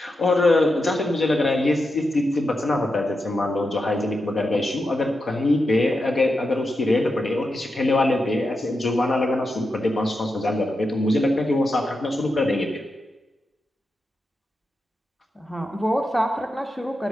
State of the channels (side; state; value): both; normal; correlation 0.88